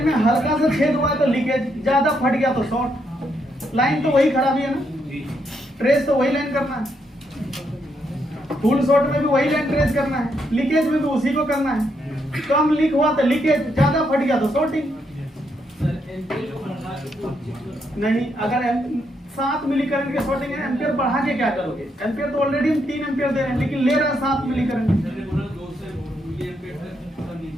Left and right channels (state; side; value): normal; both; correlation 0.77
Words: में हल्का सा छेद हुआ है तो लीकेज, ज्यादा फट गया तो शॉर्ट। लाइन तो वही खराबी है ना, ट्रेस तो वही लाइन करना है। फुल शॉर्ट में भी वही लाइन ट्रेस करना है, लीकेज में भी उसी को करना है। कम लीक हुआ तो लीकेज, ज्यादा फट गया तो शॉर्टिंग। नहीं, अगर 7 मिली करंट के शॉर्टिंग है, एम्पियर बढ़ा के क्या करोगे? एम्पियर तो ऑलरेडी हम 3 एम्पियर दे रहे हैं, लेकिन ले रहे हैं 7 मिली करंट,